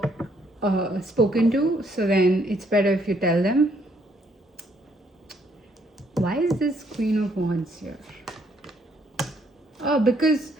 spoken to, so then it's better if you tell them. Why is this Queen of Wands here? Oh, because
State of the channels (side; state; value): both; normal; correlation 0.69